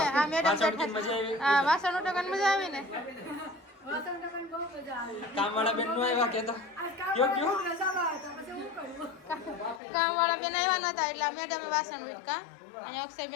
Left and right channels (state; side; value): drops out; right; at 9.8 s